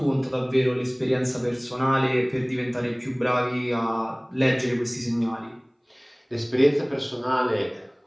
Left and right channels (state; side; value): identical; both; correlation 1.00